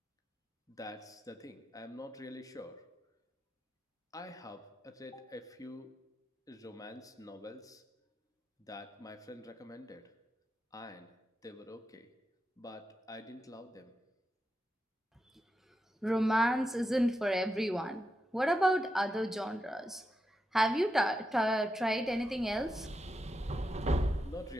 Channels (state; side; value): normal; both; correlation 0.87